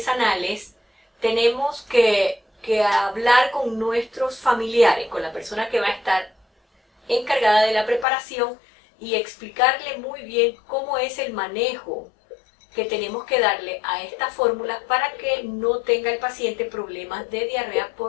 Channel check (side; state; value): right; drops out; at 8.1 s